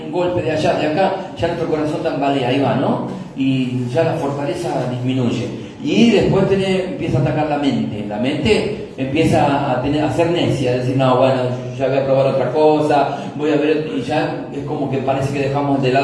un golpe de allá, de acá, ya nuestro corazón tambalea, ahí va, ¿no? Y ya la fortaleza disminuye. Y después empieza a atacar la mente empieza a ser necia, a decir, no, bueno, ya voy a probar otra cosa, voy a ver, y ya es como que parece que dejamos de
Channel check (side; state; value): both; identical; correlation 1.00